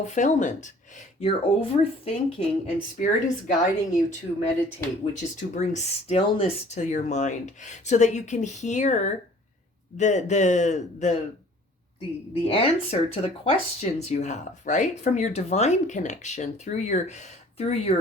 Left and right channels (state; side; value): normal; both; correlation 0.52